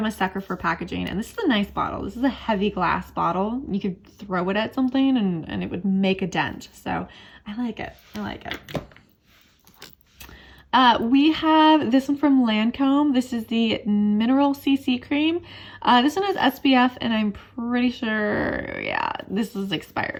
a sucker for packaging, and this is a nice bottle. This is a heavy glass bottle. You could throw it at something and it would make a dent. So I like it. I like it. We have this one from Lancome. This is the Mineral CC Cream. This one has SPF, and I'm pretty sure, yeah, this is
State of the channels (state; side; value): identical; both; correlation 1.00